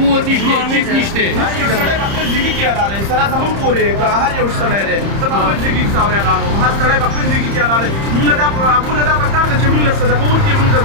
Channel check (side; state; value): left; late; 30 ms